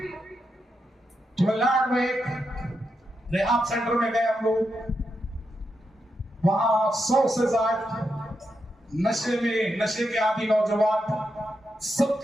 تملناڈ میں ایک ریحاب سینٹر میں گئے ہم لوگ، وہاں 100 سے زائد نشے کے عادی نوجوان، سب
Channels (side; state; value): both; normal; correlation 0.85